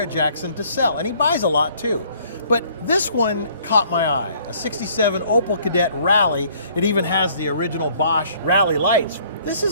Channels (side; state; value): both; inverted; correlation -0.59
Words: to sell, and he buys a lot too. But this one caught my eye, a 67 Opel Kadett Rallye. It even has the original Bosch Rallye lights. This